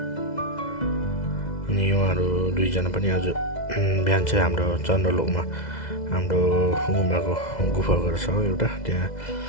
अनि उहाँहरू दुईजना पनि आज बिहान चाहिँ हाम्रो चन्द्रलोकमा हाम्रो गुफा घर छ एउटा,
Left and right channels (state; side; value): late; right; 2.0 ms